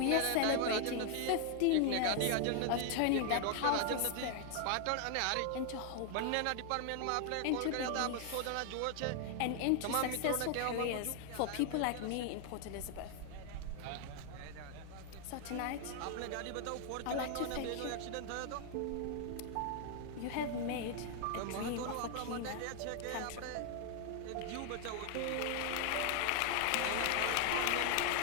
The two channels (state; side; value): different; both; correlation 0.00